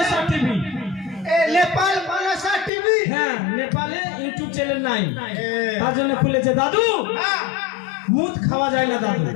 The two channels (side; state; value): right; drops out; at 2.7 s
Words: টিভি। নেপাল মনসা টিভি। হ্যাঁ নেপালে ইউটিউব চ্যানেল নাই, তার জন্য খুলেছে। দাদু মুদ খাওয়া যায় না দাদু,